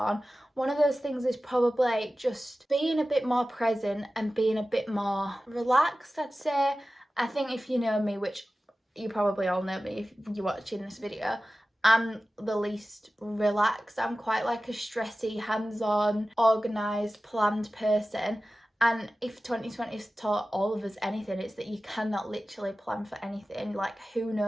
One of those things is probably just being a bit more present and being a bit more relaxed, I'd say. I think if you know me, which you probably all know me if you're watching this video, I'm the least relaxed. I'm quite like a stressy, hands-on, organised, planned person. And if 2020 has taught all of us anything, it's that you cannot literally plan for anything. Like, who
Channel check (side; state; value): both; normal; correlation 0.95